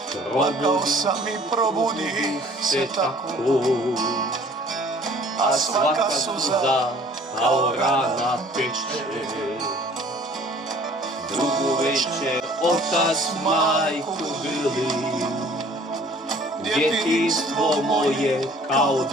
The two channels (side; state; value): both; normal; correlation 0.53